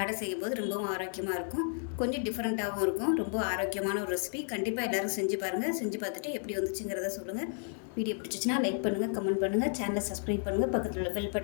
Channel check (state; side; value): silent; right; 56 dB below the other